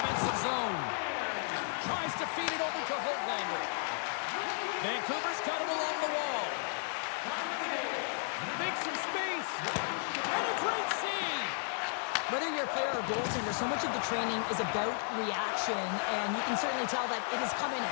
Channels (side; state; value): right; silent; 55 dB below the other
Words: zone. Tries to feed it over to Holtlander. Vancouver's got it along the wall. Makes some space. And a great save. Whether you're a player or goaltender, so much of the training is about reaction, and you can certainly tell that it has come in